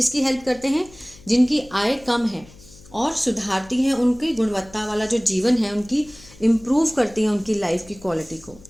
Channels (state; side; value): noise; left; hum, 23 dB below the sound